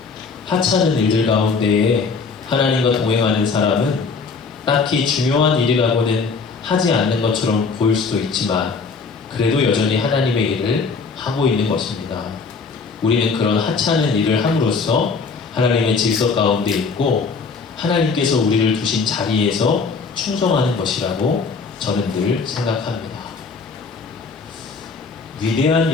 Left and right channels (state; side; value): quieter; right; 4.9 dB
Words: 하찮은 일들 가운데에 하나님과 동행하는 사람은 딱히 중요한 일이라고는 하지 않는 것처럼 보일 수도 있지만 그래도 여전히 하나님의 일을 하고 있는 것입니다. 우리는 그런 하찮은 일을 함으로써 하나님의 질서 가운데 있고 하나님께서 우리를 두신 자리에서 충성하는 것이라고 저는 늘 생각합니다. 위대한